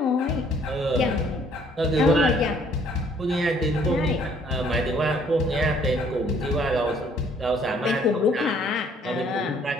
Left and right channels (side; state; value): both; normal; correlation 0.61